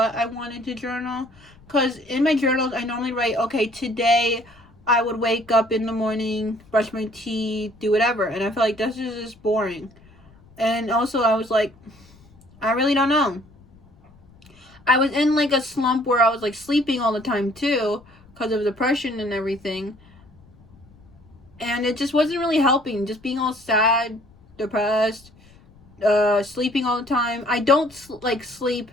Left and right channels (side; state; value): left; noise; rumble, 27 dB below the sound